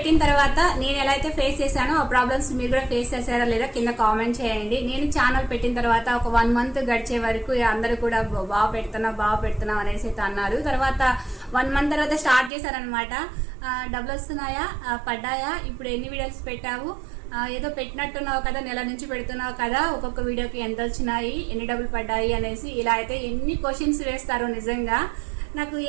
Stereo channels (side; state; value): left; drops out; at 12.5 s